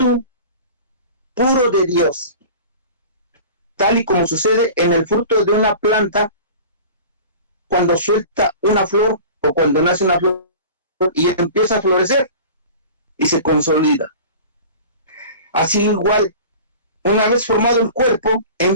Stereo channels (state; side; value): inverted; both; correlation -0.38